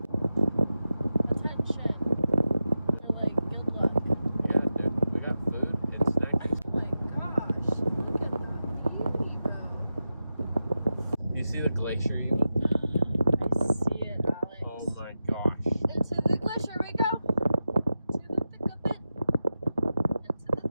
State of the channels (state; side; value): inverted; both; correlation -0.91